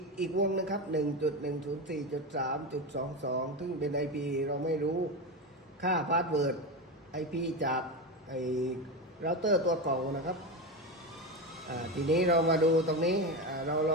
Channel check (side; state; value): both; normal; correlation 0.17